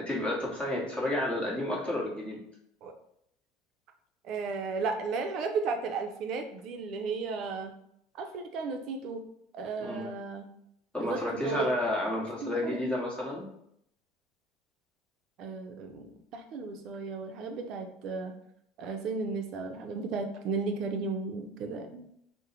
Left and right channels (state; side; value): normal; both; correlation 0.50